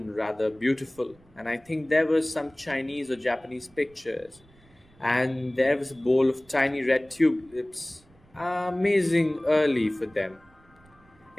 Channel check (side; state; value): right; noise; rumble, 29 dB below the sound